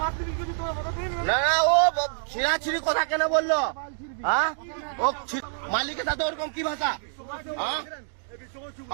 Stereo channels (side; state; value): left; silent; digital silence